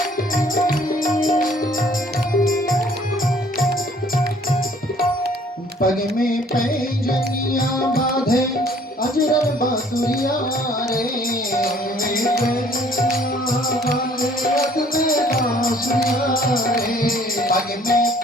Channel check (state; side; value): normal; both; correlation 0.58